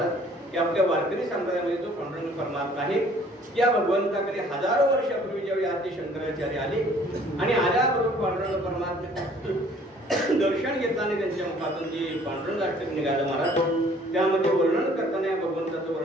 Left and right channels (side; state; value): both; normal; correlation 0.56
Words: की आपल्या वारकरी संप्रदायामध्ये जो पांडुरंग परमात्मा आहे त्या भगवंताकडे हजारो वर्षापूर्वी ज्यावेळी आद्य शंकराचार्य आले आणि आल्याबरोबर पांडुरंग परमात्मा दर्शन घेताना त्यांच्या मुखातून जे पांडुरंग अष्टक निघालं महाराज त्यामध्ये वर्णन करताना या भगवंताचं